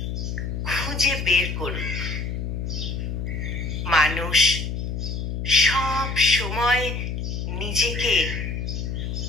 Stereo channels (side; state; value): left; noise; hum, 3 dB below the sound